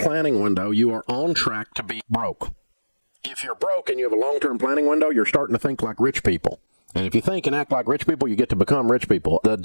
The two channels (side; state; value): both; inverted; correlation -1.00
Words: window, you are on track to be broke. If you're broke and you have a long-term planning window, you're starting to think like rich people. And if you think and act like rich people, you get to become rich people. The